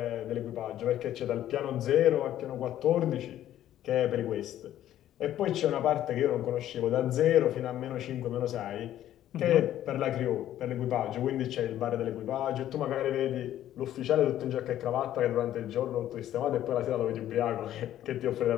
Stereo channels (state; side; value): quieter; right; 12.2 dB